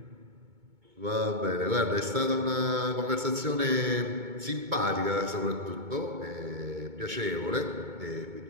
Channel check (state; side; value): late; left; 2.2 ms